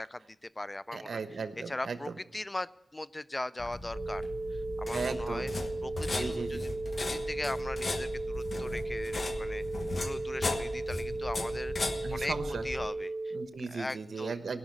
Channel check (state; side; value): normal; both; correlation 0.94